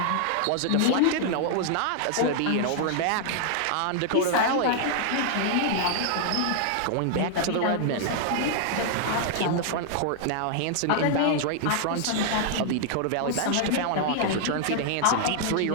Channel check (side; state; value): both; different; correlation -0.01